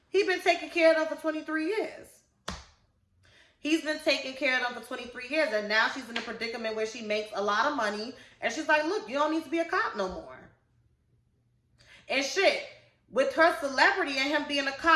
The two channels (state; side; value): identical; both; correlation 1.00